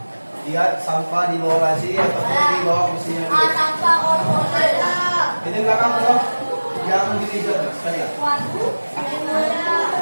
lihat sampah di bawah laci atau di bawah mesinnya dulu. Sampah ada. Ini belakang loh, yang di meja sekalian. Waduh.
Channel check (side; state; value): both; inverted; correlation -1.00